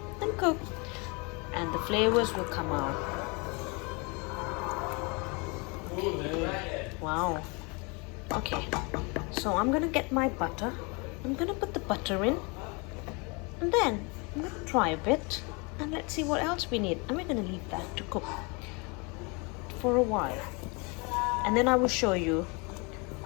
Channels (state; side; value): quieter; right; 30.0 dB